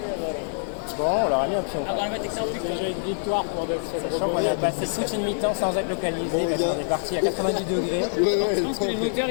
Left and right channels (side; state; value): right; silent; 57 dB below the other